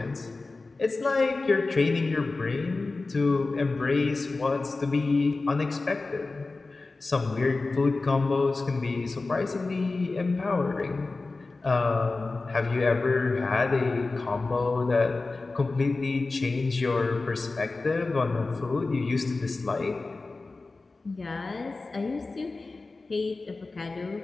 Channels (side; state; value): right; quieter; 3.6 dB